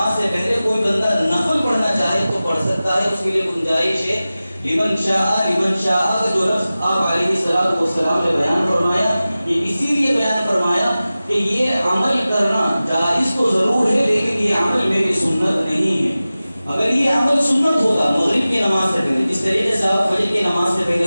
سے پہلے کوئی بندہ نفل پڑھنا چاہے تو پڑھ سکتا ہے، اس کے لیے گنجائش ہے۔ لمن شاء، لمن شاء کا جو لفظ آپ علیہ الصلوۃ والسلام نے بیان فرمایا یہ اسی لیے بیان فرمایا کہ یہ عمل کرنا جائز تو ضرور ہے لیکن یہ عمل میری سنت نہیں ہے۔ اگر یہ عمل سنت ہوتا مغرب کی نماز سے پہلے، جس طریقے سے آپ فجر کی نماز سے پہلے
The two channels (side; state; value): both; inverted; correlation -0.96